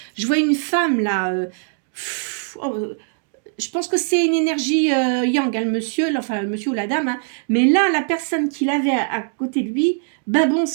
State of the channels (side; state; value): left; silent; 65 dB below the other